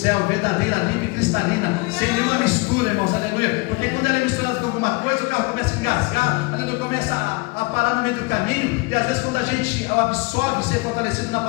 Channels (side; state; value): right; quieter; 26.5 dB